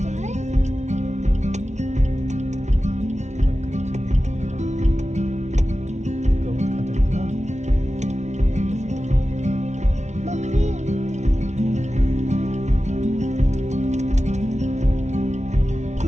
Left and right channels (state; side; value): late; left; 0.33 ms